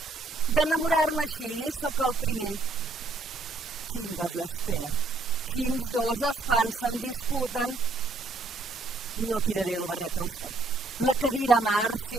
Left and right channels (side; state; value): left; quieter; 3.3 dB